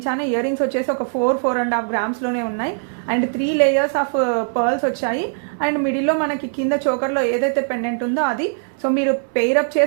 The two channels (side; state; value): left; silent; 63 dB below the other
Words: ఇయర్ రింగ్స్ వచ్చేసి ఒక 4.5 గ్రామ్స్ లోనే ఉన్నాయి అండ్ 3 లేయర్స్ ఆఫ్ పర్ల్స్ వచ్చాయి. అండ్ మిడిల్లో మనకి కింద చోకర్ లో ఏదైతే పెండెంట్ ఉందో అది. సో మీరు పేరప్